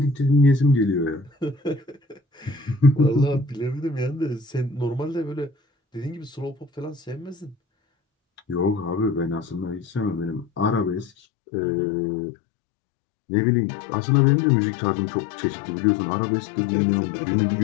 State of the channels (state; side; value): drops out; right; at 11.1 s